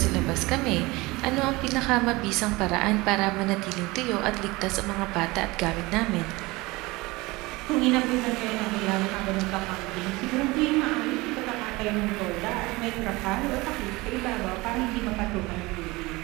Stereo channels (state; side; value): quieter; left; 22.3 dB